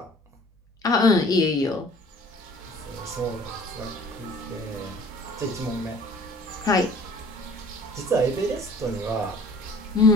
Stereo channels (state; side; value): normal; both; correlation 0.49